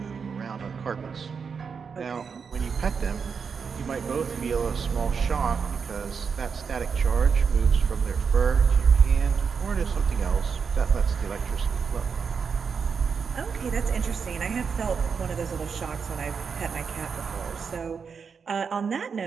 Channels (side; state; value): left; quieter; 6.0 dB